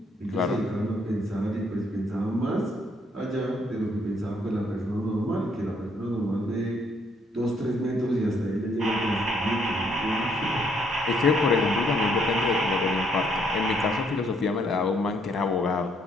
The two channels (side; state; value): both; normal; correlation 0.69